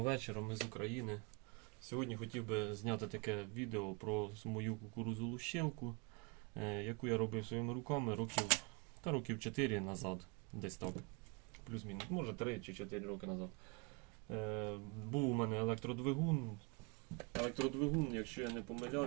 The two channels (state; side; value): quieter; left; 30.2 dB